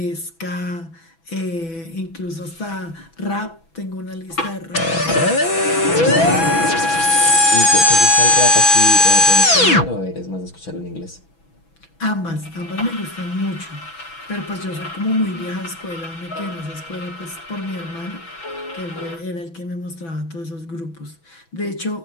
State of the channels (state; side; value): late; right; 6.1 ms